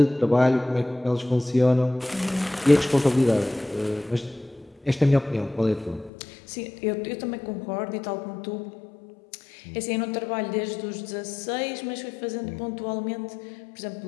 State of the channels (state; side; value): drops out; right; at 6.1 s